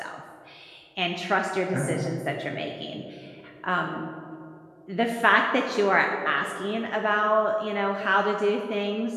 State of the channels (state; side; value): identical; both; correlation 1.00